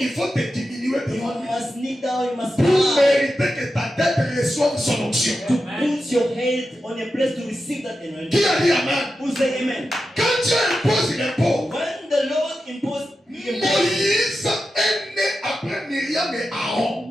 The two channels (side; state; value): both; normal; correlation 0.90